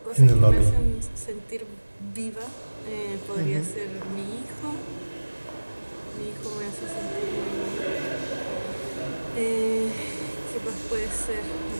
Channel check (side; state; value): both; inverted; correlation -1.00